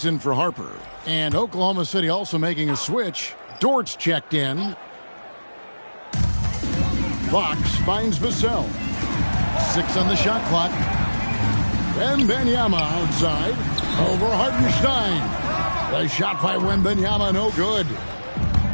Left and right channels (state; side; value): inverted; both; correlation -1.00